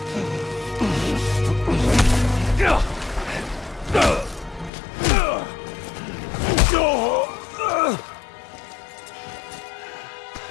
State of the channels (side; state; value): right; drops out; at 4.7 s